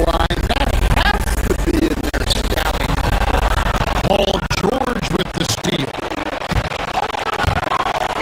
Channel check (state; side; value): identical; both; correlation 1.00